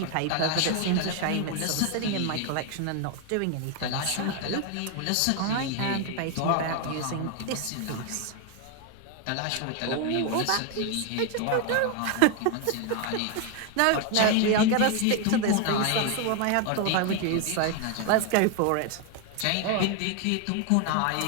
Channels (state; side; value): different; both; correlation 0.01